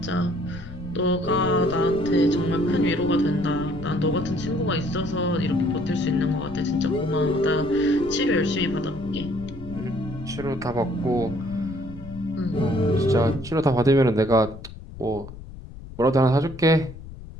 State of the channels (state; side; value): noise; left; rumble, 14 dB below the sound